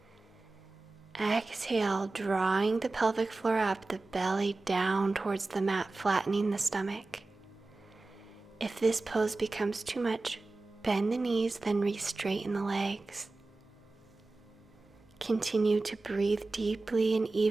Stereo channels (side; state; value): left; quieter; 3.4 dB